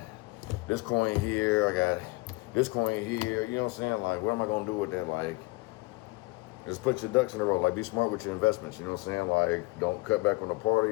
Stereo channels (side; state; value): right; quieter; 23.7 dB